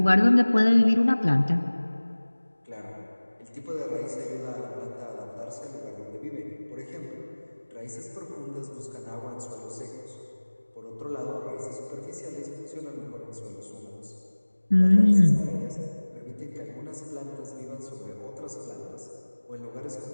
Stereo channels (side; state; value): both; inverted; correlation -1.00